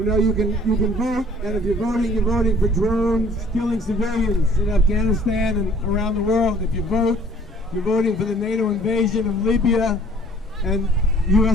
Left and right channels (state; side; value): normal; both; correlation 0.55